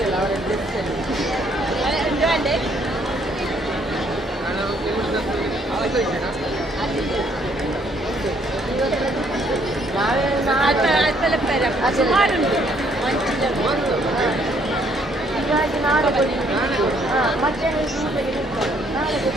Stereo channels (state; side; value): normal; both; correlation 0.67